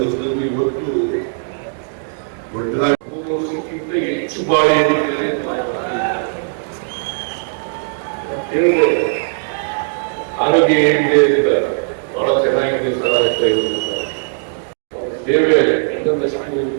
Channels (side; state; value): left; silent; digital silence